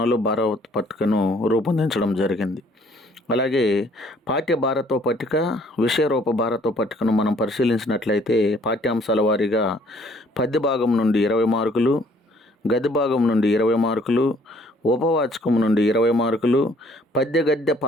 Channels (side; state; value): both; normal; correlation 0.60